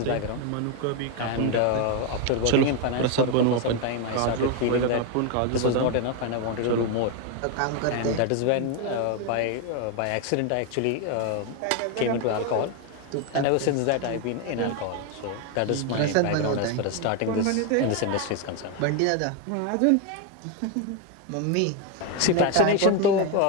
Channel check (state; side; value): different; both; correlation 0.01